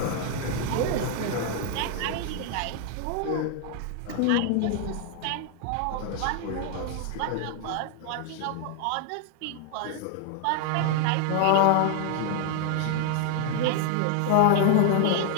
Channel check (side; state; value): both; different; correlation 0.00